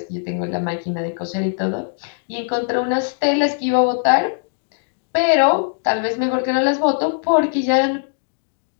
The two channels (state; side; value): silent; right; digital silence